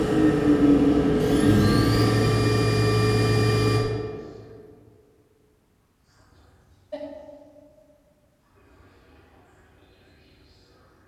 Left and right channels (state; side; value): identical; both; correlation 1.00